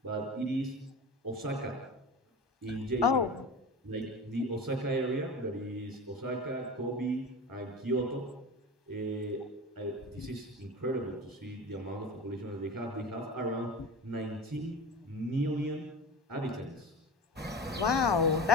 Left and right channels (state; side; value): normal; both; correlation 0.31